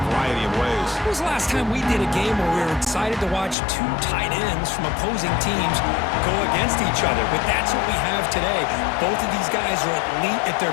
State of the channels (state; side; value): drops out; right; at 3.6 s